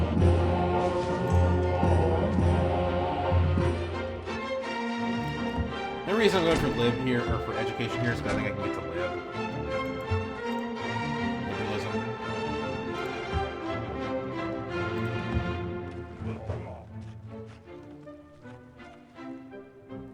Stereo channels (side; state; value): both; identical; correlation 1.00